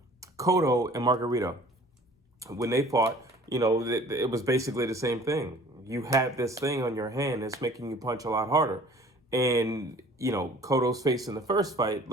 and Margarito. When they fought, you know, it was basically the same thing. You had this thing on your hand that's making you punch a lot harder. And, you know, Cotto's face in the first fight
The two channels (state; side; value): normal; both; correlation 0.49